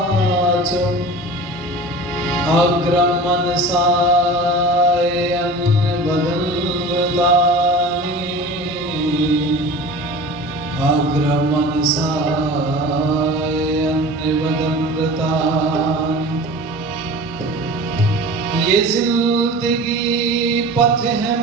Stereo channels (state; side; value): normal; both; correlation 0.37